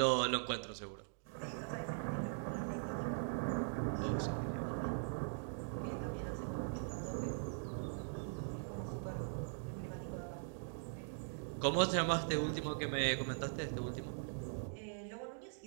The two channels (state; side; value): silent; left; digital silence